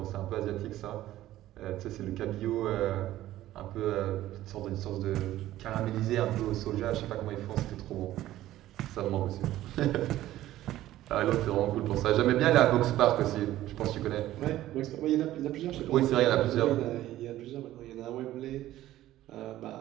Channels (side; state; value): left; quieter; 14.4 dB